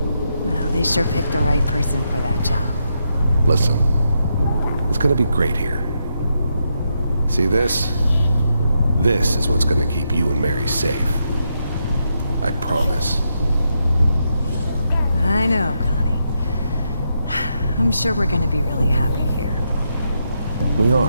Well, they sure picked the right person for that job. Listen, it's gonna be great here. See this? This is what's gonna keep you and Mary safe. I promise. I know, Connie. I'm sure we're gonna be really happy here. We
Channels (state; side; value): inverted; both; correlation -0.82